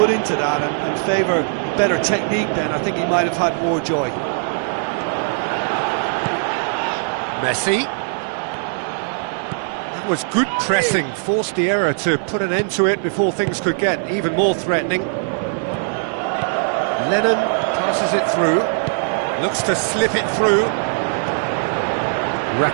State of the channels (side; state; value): left; silent; 62 dB below the other